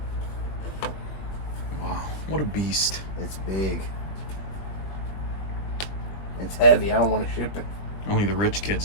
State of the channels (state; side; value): late; right; 20 ms